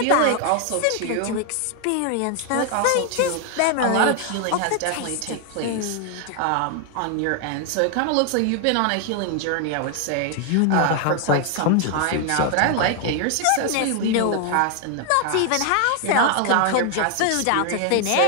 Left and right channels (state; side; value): different; both; correlation 0.00